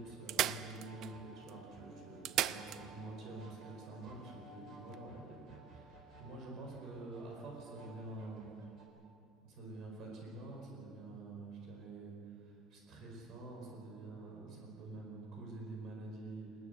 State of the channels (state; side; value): quieter; left; 6.5 dB